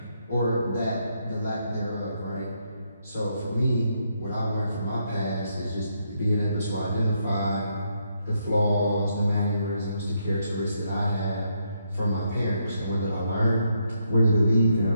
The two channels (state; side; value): inverted; both; correlation -0.77